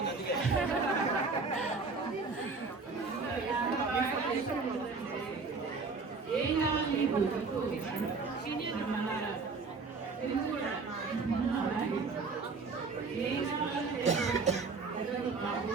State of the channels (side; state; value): left; quieter; 4.4 dB